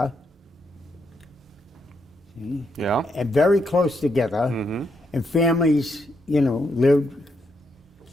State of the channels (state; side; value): normal; both; correlation 0.79